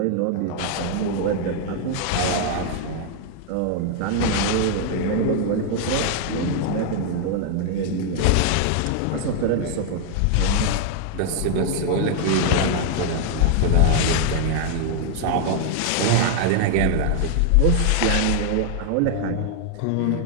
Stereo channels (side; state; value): both; different; correlation 0.00